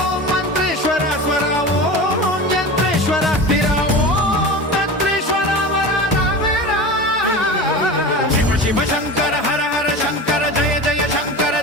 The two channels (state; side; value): normal; both; correlation 0.30